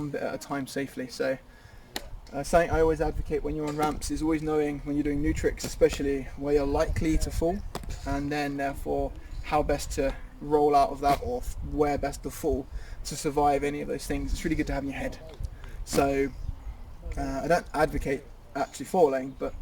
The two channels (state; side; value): identical; both; correlation 1.00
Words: bit at a time safely. So something I always advocate when you're on ramps is always knowing when you're doing new tricks, especially where you're likely to fall, and then therefore how best to roll out of that, or where best to fall to survive any of those things. It's really good to have in your head. So I don't advocate actually falling, but